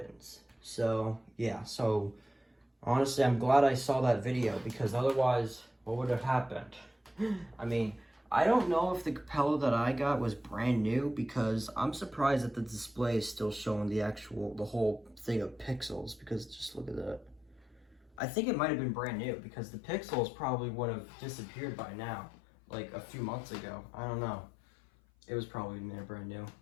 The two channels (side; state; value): right; drops out; at 18.2 s